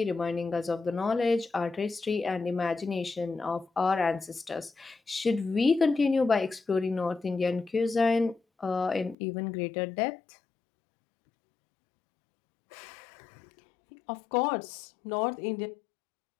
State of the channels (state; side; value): drops out; right; at 9.2 s